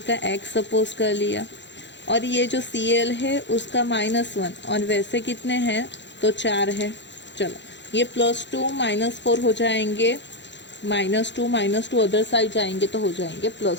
का X सपोज कर लिया, और ये जो Cl है उसका -1, और वैसे कितने हैं, तो 4 है। चलो, ये +2 -4 हो जाएंगे, -2 अदर साइड जाएंगे तो हो जाएंगे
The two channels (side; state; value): right; late; 0.52 ms